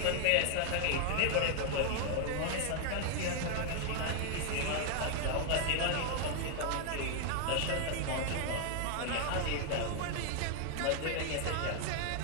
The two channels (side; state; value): both; different; correlation 0.00